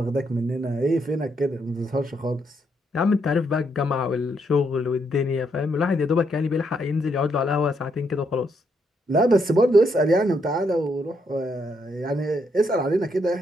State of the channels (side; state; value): both; normal; correlation 0.76